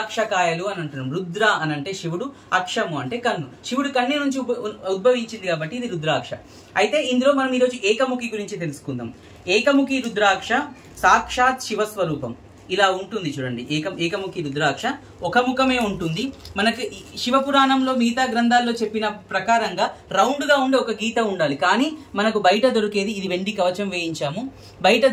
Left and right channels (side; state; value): both; identical; correlation 1.00